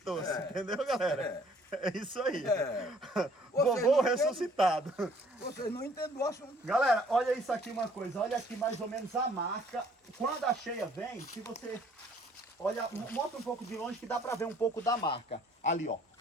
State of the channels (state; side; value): normal; both; correlation 0.59